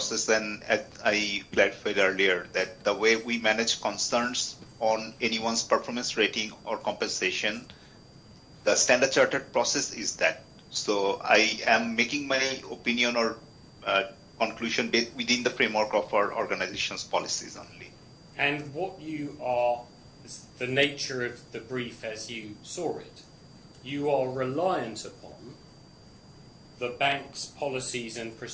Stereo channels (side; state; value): both; identical; correlation 1.00